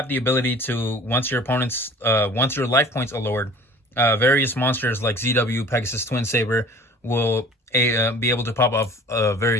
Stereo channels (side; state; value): both; normal; correlation 0.46